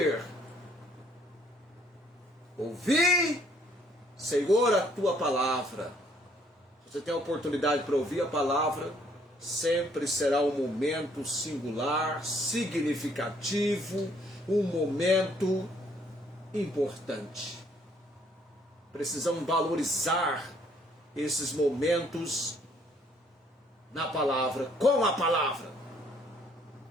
Ouvi, Senhor, a tua palavra. Você tem a oportunidade para ouvir a palavra, sempre será um momento singular, significativo, um momento importante. Precisamos valorizar esses momentos na palavra, com a palavra.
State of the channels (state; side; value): normal; both; correlation 0.64